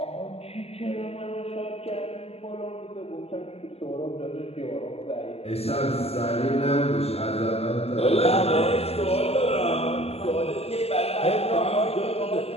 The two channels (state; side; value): late; right; 0.29 ms